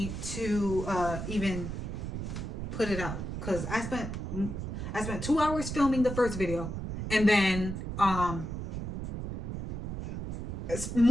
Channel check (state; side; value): noise; right; rumble, 5 dB below the sound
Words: to even put it out. Because I spent 2 hours filming the first video, and then